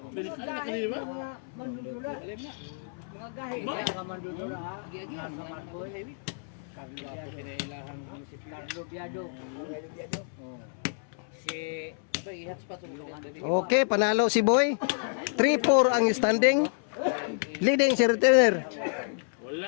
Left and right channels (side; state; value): right; silent; 58 dB below the other